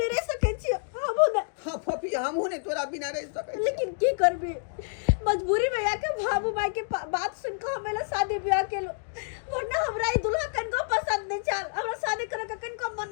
रह सके छियो हमहु ना हां फोफी हमहु नहीं तोरा बिना रह सके लेकिन की करबी मजबूरी में आके बाबू माई के बात सुन के हमेला शादी ब्याह केलो वरना हमरा ई दुल्हा कन को पसंद नहीं चल हमरा शादी करे के कन को मन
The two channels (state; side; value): silent; right; digital silence